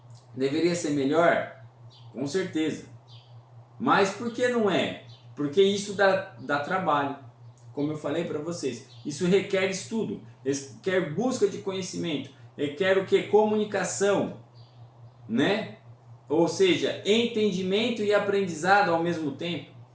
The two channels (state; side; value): identical; both; correlation 1.00